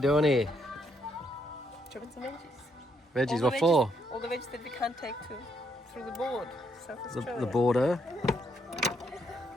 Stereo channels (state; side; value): normal; both; correlation 0.74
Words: here? Chopping some veggies. Veggies, what for? All the veggies that we can't take through the board. South Australia. The border.